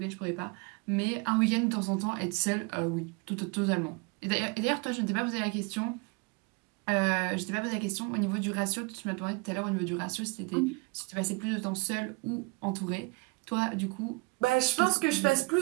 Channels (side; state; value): left; quieter; 27.3 dB